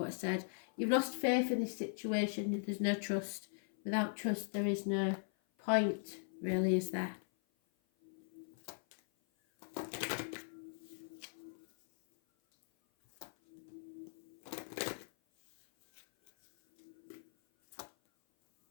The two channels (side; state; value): right; silent; 52 dB below the other